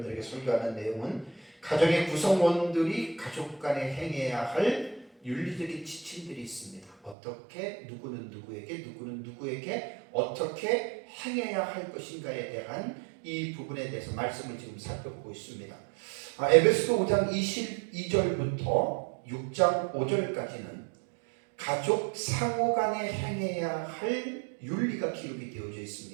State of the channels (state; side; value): drops out; left; at 7.2 s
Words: 설교하는 내용은 가정의 구성원들이 가족 간에 행해야 할 윤리적인 지침들이 있습니다. 어떻게 누구는 누구에게 어떻게 행해야 할 것인가에 대한 이 부분에 대해서 말씀을 지금 살펴보고 있습니다. 에베소 5장 22절부터 6장 5절까지는 가족 상호 간에 행해야 할 윤리가 기록이 되어져